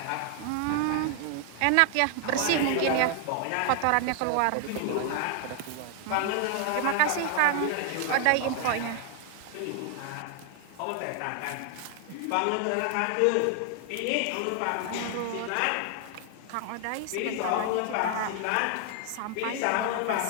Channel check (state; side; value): different; both; correlation 0.00